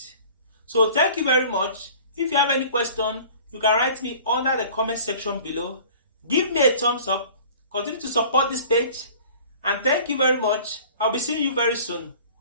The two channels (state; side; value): inverted; both; correlation -0.46